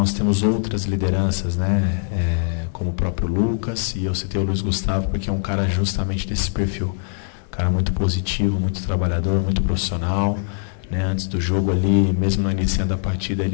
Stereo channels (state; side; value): silent; right; digital silence